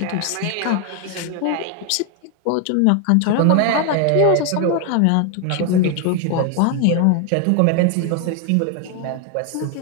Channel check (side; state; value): both; different; correlation 0.01